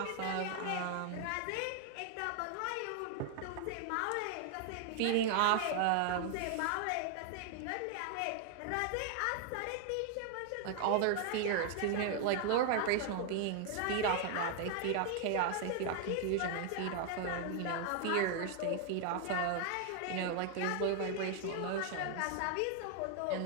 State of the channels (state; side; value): different; both; correlation 0.00